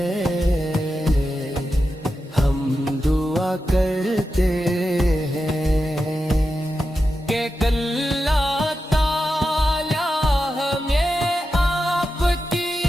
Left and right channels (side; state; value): both; normal; correlation 0.90